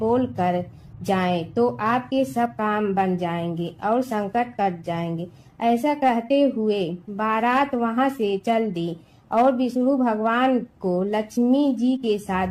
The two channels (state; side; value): identical; both; correlation 1.00